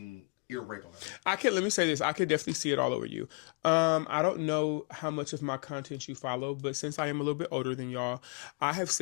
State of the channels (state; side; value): quieter; right; 34.9 dB